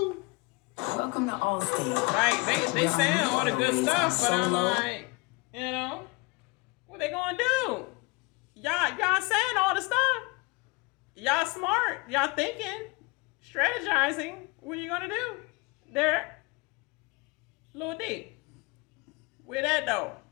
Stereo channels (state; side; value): quieter; right; 26.9 dB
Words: Welcome to Allstate. Like they saying all the good stuff, but I'm like, you know, what they gonna do? Y'all saying all the stuff. Y'all smart. Y'all thinking, strategizing. What you gonna do? There, Lil D. Where that though?